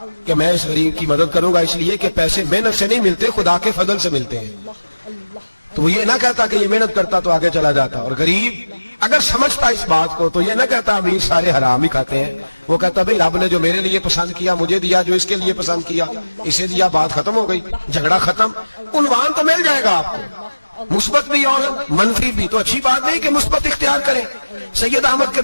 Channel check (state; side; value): inverted; both; correlation -1.00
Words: کہ میں اس غریب کی مدد کروں گا اس لیے کہ پیسے محنت سے نہیں ملتے خدا کے فضل سے ملتے ہیں، تو وہ یہ نہ کہتا کہ یہ محنت کرتا تو آگے چلا جاتا، اور غریب اگر سمجھتا اس بات کو تو یہ نہ کہتا امیر سارے حرام ہی کھاتے ہیں، وہ کہتا بھئی رب نے جو میرے لیے پسند کیا مجھے دیا، جو اس کے لیے پسند کیا اسے دیا، بات ختم ہو گئی، جھگڑا ختم۔ عنوان تو مل جائے گا آپ کو، مثبت بھی اور منفی بھی، تو اچھی بات نہیں کہ مثبت اختیار کریں۔ سید احمد